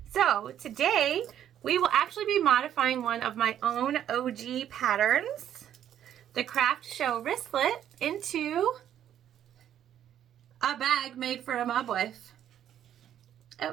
So today we will actually be modifying one of my own OG patterns, the Craft Show Wristlet, into a bag made for a Mob Wife.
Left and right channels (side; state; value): left; quieter; 10.5 dB